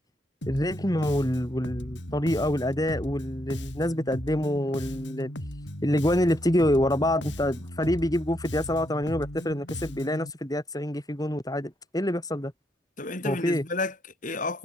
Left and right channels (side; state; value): both; normal; correlation 0.77